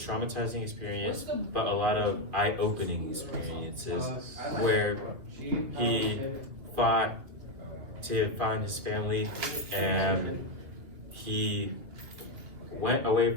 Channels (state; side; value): late; left; 2.5 ms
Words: experience but a lot of eye-opening experiences where he fought to find his family, and he went away